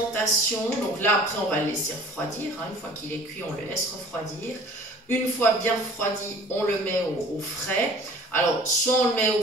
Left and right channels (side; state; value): both; normal; correlation 0.48